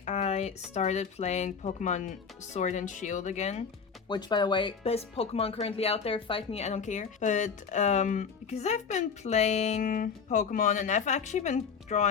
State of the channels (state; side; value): quieter; right; 6.1 dB